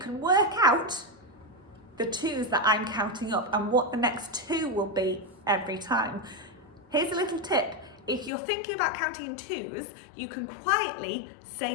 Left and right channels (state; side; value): drops out; right; at 8.3 s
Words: work out the twos that I'm counting up and what the next 2 will be every time. Here's a little tip. If you're thinking about counting in twos, you can quietly